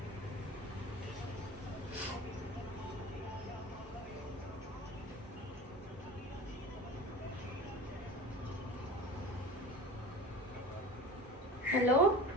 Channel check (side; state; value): both; normal; correlation 0.36